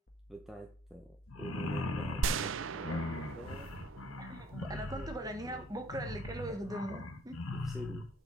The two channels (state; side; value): normal; both; correlation 0.59